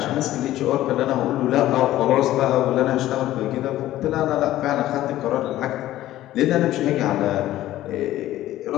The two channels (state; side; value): quieter; right; 14.4 dB